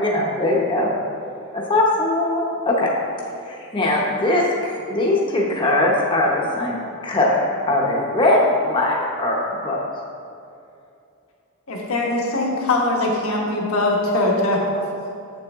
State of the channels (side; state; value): both; normal; correlation 0.02